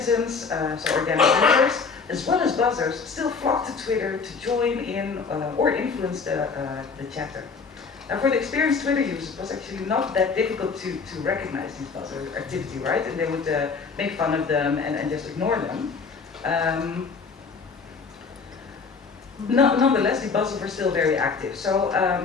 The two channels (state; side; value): quieter; right; 5.0 dB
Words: so organic users, as well as buzzers, still flocked to Twitter to join in or influence the chatter. Now for the experienced Twitter users, it was actually not that difficult to recognize these buzzer activity, right? And they would make fun of them and just ignore them. Nonetheless, the buzzers were still very active. So